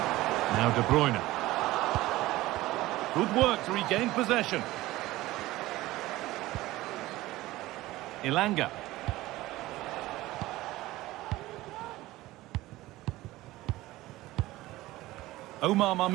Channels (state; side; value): quieter; left; 17.7 dB